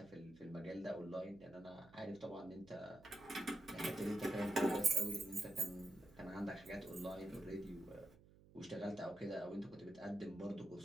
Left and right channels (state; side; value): noise; right; hum, 22 dB below the sound